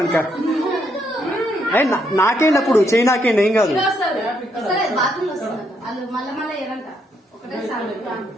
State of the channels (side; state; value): both; normal; correlation 0.75